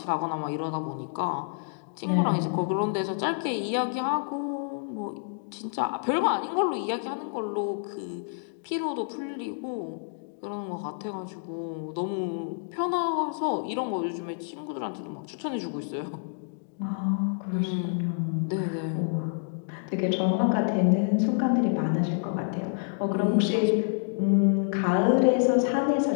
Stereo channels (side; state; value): right; silent; digital silence